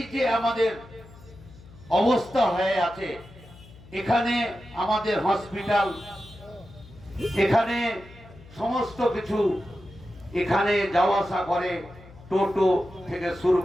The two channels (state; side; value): noise; left; hum, 21 dB below the sound